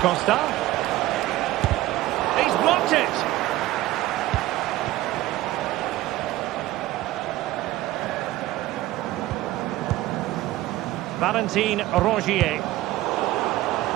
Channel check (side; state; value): left; quieter; 16.4 dB